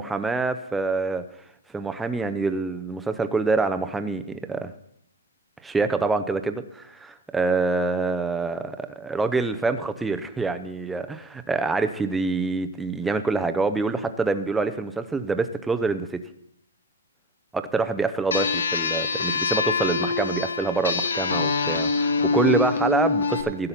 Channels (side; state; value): both; normal; correlation 0.35